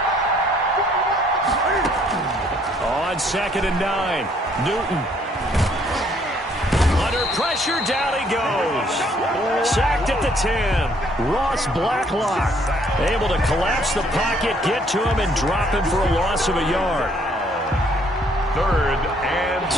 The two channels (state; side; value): normal; both; correlation 0.65